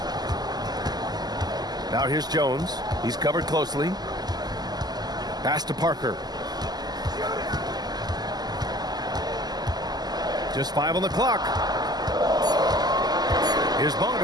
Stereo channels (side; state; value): left; late; 0.20 ms